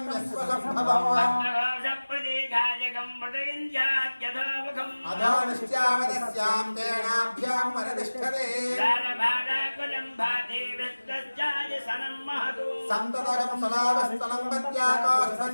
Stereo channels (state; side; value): inverted; both; correlation -1.00